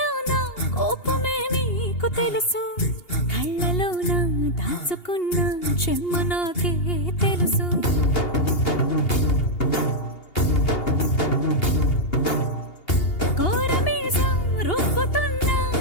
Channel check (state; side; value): late; right; 2.8 ms